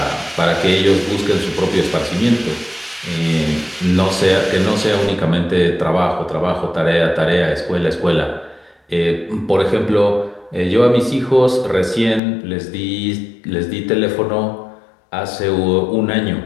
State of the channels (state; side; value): drops out; right; at 12.2 s